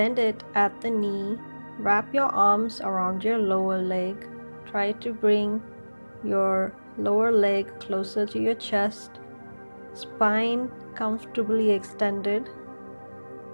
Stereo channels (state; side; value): inverted; both; correlation -1.00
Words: it at the knee, wrap your arms around your lower leg. Try to bring your lower leg closer to your chest, spine comfortably extended.